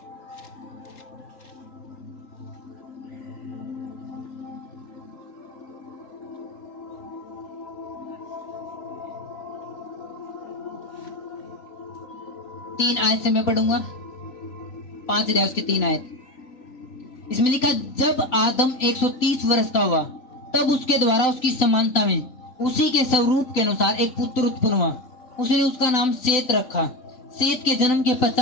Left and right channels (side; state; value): right; late; 3.9 ms